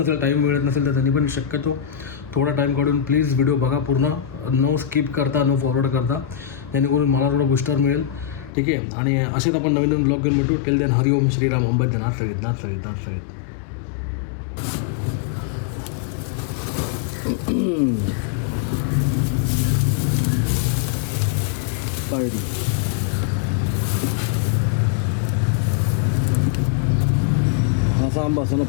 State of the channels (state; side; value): drops out; right; at 8.5 s